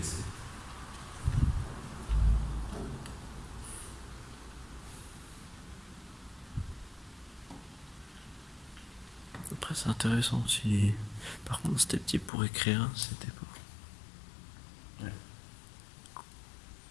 Après, c'est intéressant aussi. Par contre, c'était petit pour écrire, c'était pas.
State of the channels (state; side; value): drops out; right; at 12.3 s